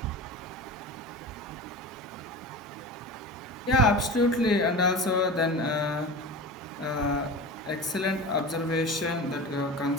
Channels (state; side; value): normal; both; correlation 0.31